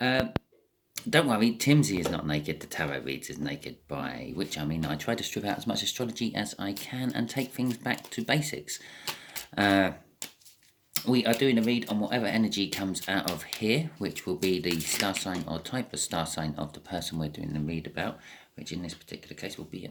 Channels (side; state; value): both; identical; correlation 1.00